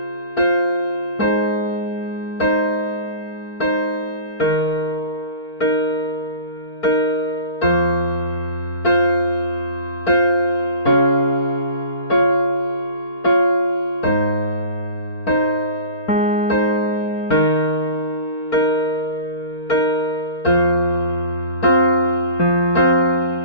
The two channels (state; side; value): late; right; 4.4 ms